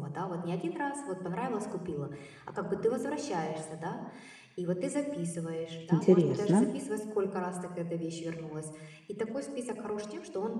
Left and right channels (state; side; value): identical; both; correlation 1.00